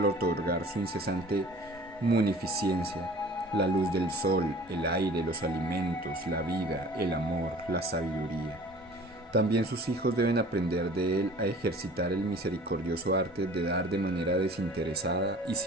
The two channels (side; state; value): both; normal; correlation 0.46